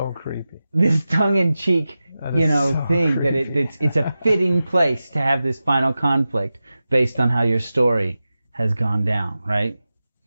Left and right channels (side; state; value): both; inverted; correlation -0.94